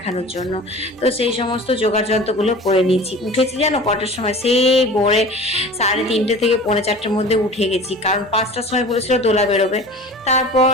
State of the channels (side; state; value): both; normal; correlation 0.39